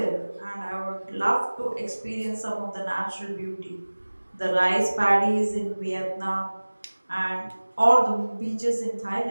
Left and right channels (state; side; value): inverted; both; correlation -1.00